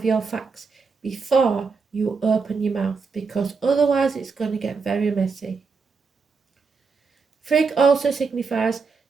your facts before you open your mouth, because otherwise it's going to get very messy. Frigg also signifies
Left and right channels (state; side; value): quieter; left; 4.8 dB